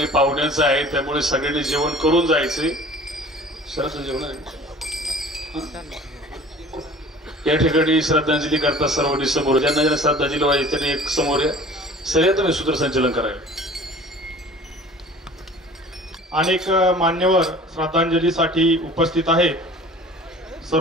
पाहुण्यांचं आहे, त्यामुळे सगळ्यांनी जेवण करून जायचे. सरस जेवण आहे या ठिकाणी. श्रद्धांजली करता सर्वांनी समोर, ज्यांना श्रद्धांजली व्हायची त्यांनी एक समोर या. सगळ्या तुम्ही सूत्रसंचलन करायला. अनेक मान्यवर श्रद्धांजलीसाठी उपस्थित आहे.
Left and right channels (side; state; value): both; normal; correlation 0.45